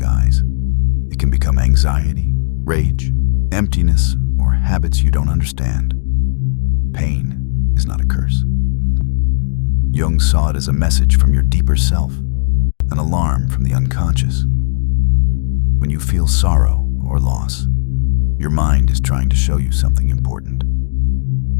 It can become anxiety, rage, emptiness, or habits you don't understand. Pain is not a curse. Jung saw it as a message from your deeper self, an alarm from the unconscious. When you feel sorrow or loss, your mind is trying to show you something important.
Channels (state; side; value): silent; right; digital silence